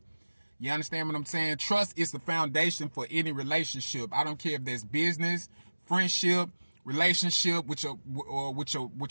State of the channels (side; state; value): both; inverted; correlation -1.00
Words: You understand what I'm saying? Trust is the foundation for any relationship. I don't care if there's business, friendship, relationship with your